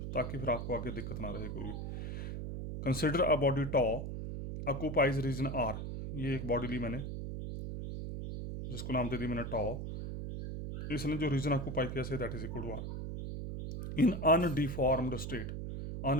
ताकि फिर आपको आगे दिक्कत ना रहे कोई भी। Consider a body to occupies region R. ये एक बॉडी ली मैंने, जिसको नाम दे दी मैंने टॉ। इसने जो रीजन ऑक्यूपाई किया say that is equal to R in undeformed state.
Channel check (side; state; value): right; noise; hum, 5 dB below the sound